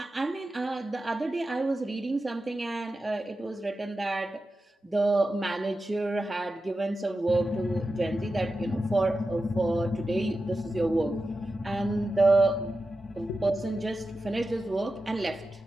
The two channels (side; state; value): both; normal; correlation 0.91